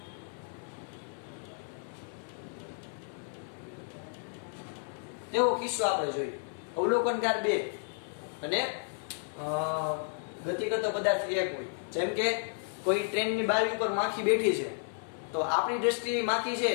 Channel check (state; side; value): silent; right; 56 dB below the other